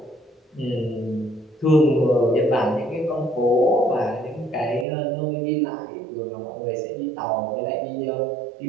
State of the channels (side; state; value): left; drops out; at 4.9 s